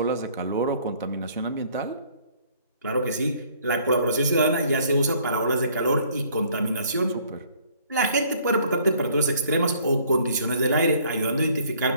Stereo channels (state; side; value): inverted; both; correlation -0.60